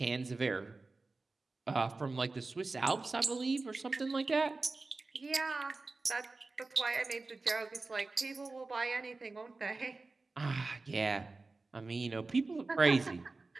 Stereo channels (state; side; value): quieter; left; 3.6 dB